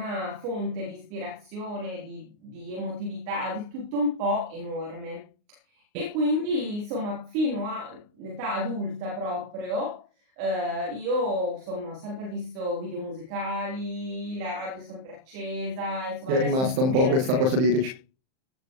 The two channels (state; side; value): late; left; 38 ms